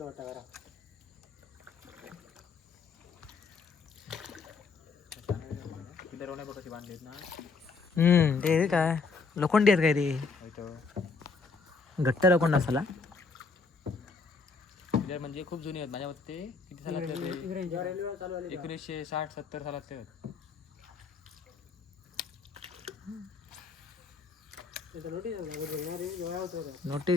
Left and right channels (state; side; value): quieter; right; 4.5 dB